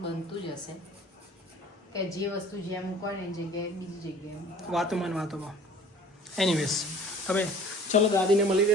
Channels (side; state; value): both; normal; correlation 0.48